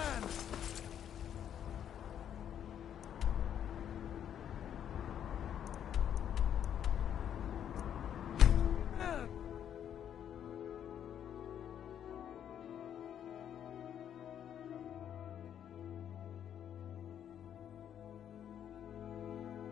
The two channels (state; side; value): quieter; right; 9.5 dB